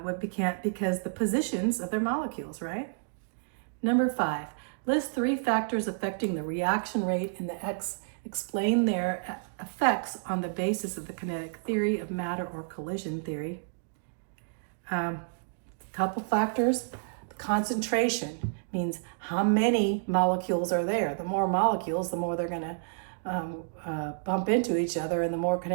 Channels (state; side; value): silent; left; digital silence